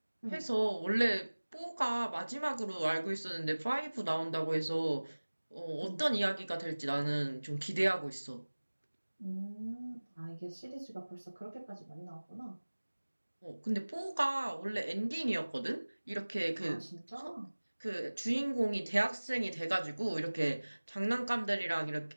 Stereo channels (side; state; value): both; inverted; correlation -1.00